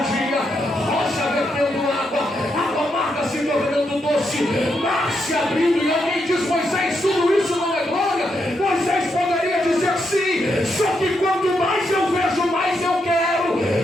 dia, rocha vertendo água amarga se tornando doce, mar se abrindo, e alguém diz: Moisés, tudo isso não é glória? Moisés poderia dizer sim, só que quanto mais eu vejo, mais eu quero.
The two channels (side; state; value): both; normal; correlation 0.81